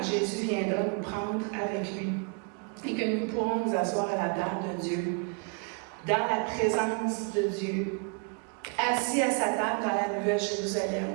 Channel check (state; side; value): quieter; left; 36.4 dB